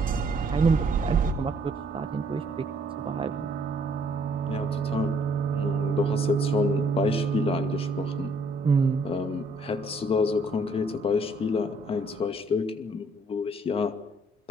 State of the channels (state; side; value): normal; both; correlation 0.65